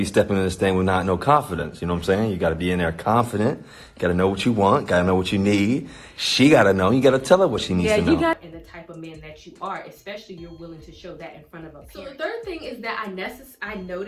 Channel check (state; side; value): identical; both; correlation 1.00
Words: stepping in this thing with no confidence. You know what I'm saying? You gotta be in there confident. You gotta know what you want. Gotta know what you need. She gotta know. You gotta tell her what she needs to know. And the type of man that you are, especially you're willing to show that in front of a parent. So the third thing is that I